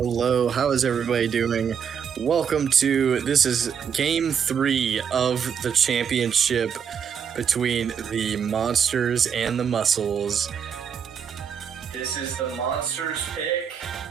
How is everybody doing? Welcome to this is game 3 of the championship between the Monsters and the Muscles. This is the Monsters pick.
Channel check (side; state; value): left; quieter; 7.4 dB